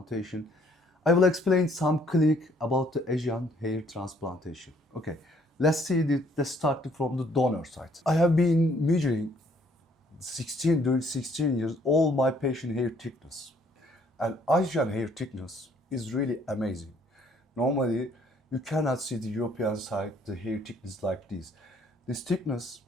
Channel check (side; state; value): both; normal; correlation 0.63